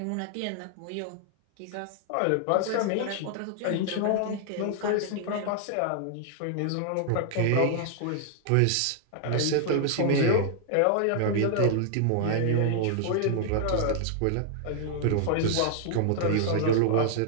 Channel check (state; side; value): different; both; correlation -0.01